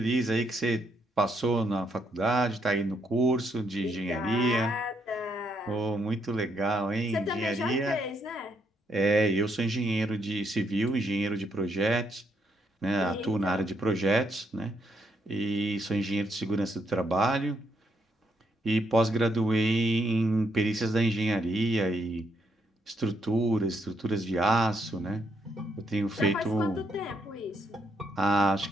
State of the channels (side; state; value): both; normal; correlation 0.75